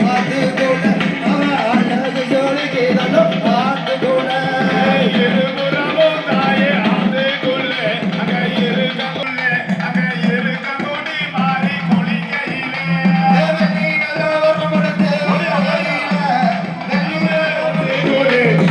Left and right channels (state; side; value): identical; both; correlation 1.00